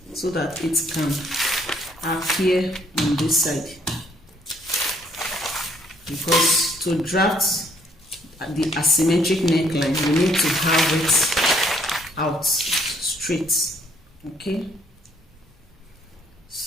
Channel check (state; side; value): normal; both; correlation 0.66